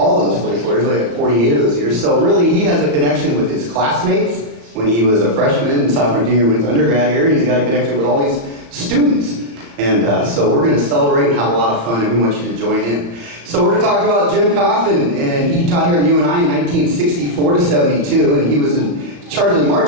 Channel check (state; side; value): late; left; 35 ms